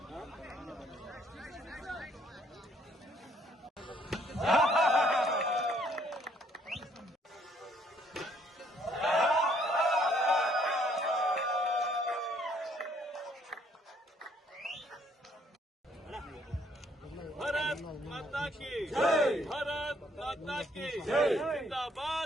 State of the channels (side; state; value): both; normal; correlation 0.65